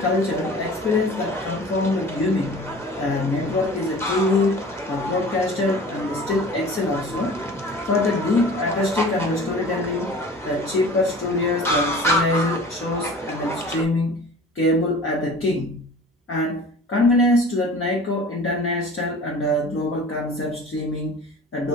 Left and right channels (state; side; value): normal; both; correlation 0.42